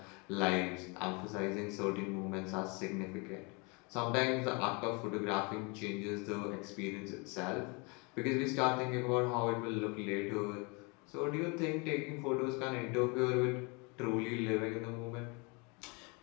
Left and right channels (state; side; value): quieter; right; 30.3 dB